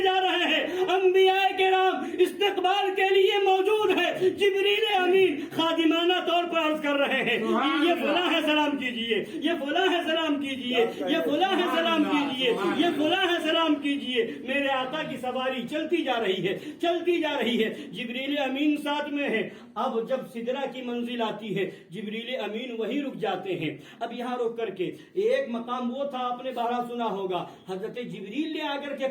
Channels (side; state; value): both; identical; correlation 1.00